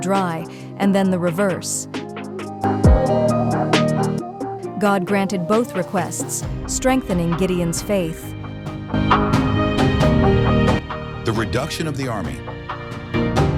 dry, and then the reverse. God granted both requests, strengthening Gideon's faith. The reduction of the army.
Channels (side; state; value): both; identical; correlation 1.00